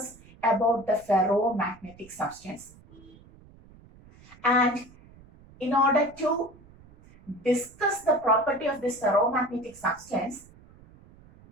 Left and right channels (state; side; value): noise; right; rumble, 24 dB below the sound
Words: about the ferromagnetic substance. And in order to discuss the property of this ferromagnetic substance,